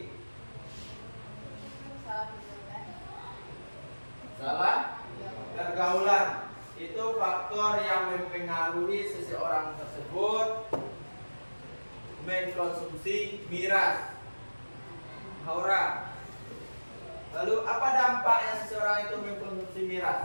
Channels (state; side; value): inverted; both; correlation -1.00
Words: Salah pergaulan, itu faktor yang mempengaruhi seseorang tersebut mengkonsumsi miras. Haura. Lalu apa dampaknya seseorang itu mengkonsumsi